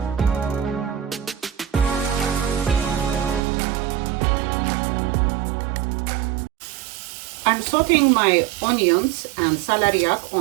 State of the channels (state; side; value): drops out; left; at 3.4 s